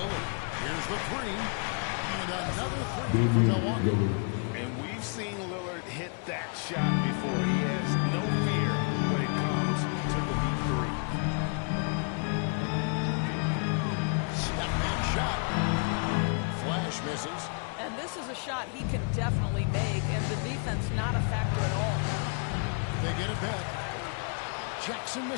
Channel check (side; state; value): right; quieter; 39.8 dB